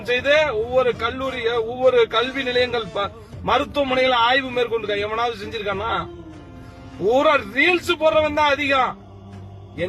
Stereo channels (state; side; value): identical; both; correlation 1.00